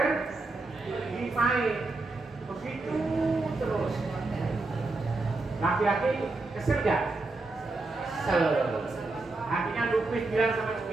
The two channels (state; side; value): quieter; left; 3.3 dB